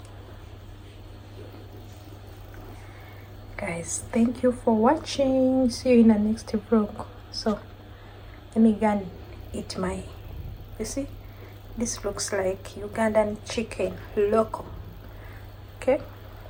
Guys, thank you for watching. See you in the next vlog. So let me go and eat my, you see, this looks like Ugandan chicken loco. Okay,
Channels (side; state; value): both; identical; correlation 1.00